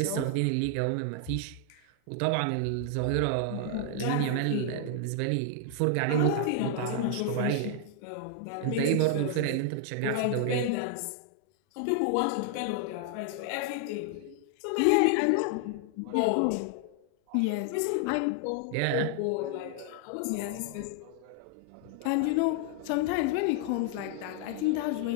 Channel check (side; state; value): both; different; correlation 0.00